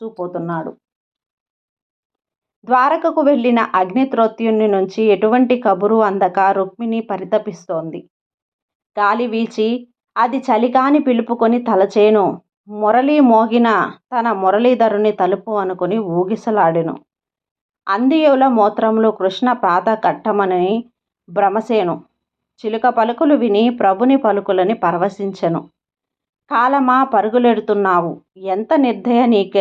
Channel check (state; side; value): identical; both; correlation 1.00